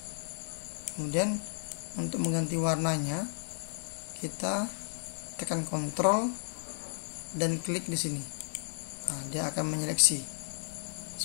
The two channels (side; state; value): right; silent; digital silence